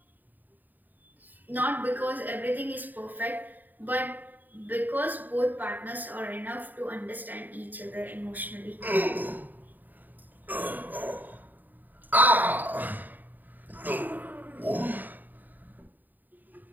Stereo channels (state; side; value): late; left; 0.087 ms